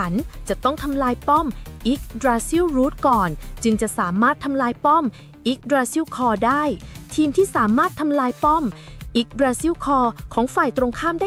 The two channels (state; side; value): identical; both; correlation 1.00